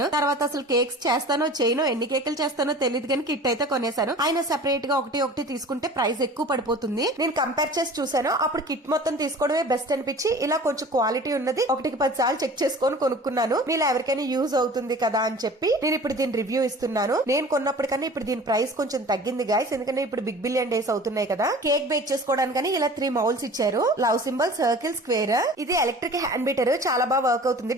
తర్వాత అసలు కేక్స్ చేస్తానో చేయనో, ఎన్ని కేకులు చేస్తానో తెలియదు కానీ కిట్ అయితే కొనేసాను. ఆయన సెపరేట్ గా ఒకటి తీసుకుంటే ప్రైస్ ఎక్కువ పడిపోతుంది. నేను కంపేర్ చేసి చూసాను, అప్పుడు కిట్ మొత్తం తీసుకోవడమే బెస్ట్ అనిపించి ఇలా కొంచెం క్వాలిటీ ఉన్నది 1-10 సార్లు చెక్ చేసుకొని కొనుక్కున్నాను. మీరు ఎవరికైనా యూజ్ అవుతుంది కదా అని చెప్పి నేను ఇప్పుడు దీని రివ్యూ ఇస్తున్నాను. నేను కొన్నప్పటికన్నా ఇప్పుడు దీని ప్రైస్ కొంచెం తగ్గింది గైస్, ఎందుకంటే ఇప్పుడు బిగ్ బిలియన్ డేస్ అవుతున్నాయి కదా. కేక్ బేక్ చేసుకోవడానికి ఇలా 3 మౌల్స్ ఇచ్చారు. Love symbol, circle, square. ఇది ఎలక్ట్రిక్ హ్యాండ్ బీటర్, చాలా బాగా వర్క్ అవుతుంది,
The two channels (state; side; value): normal; both; correlation 0.42